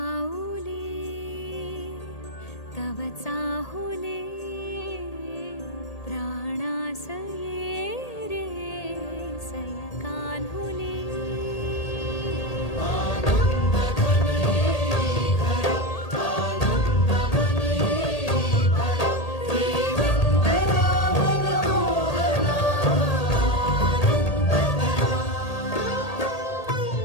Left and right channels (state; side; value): late; right; 1.8 ms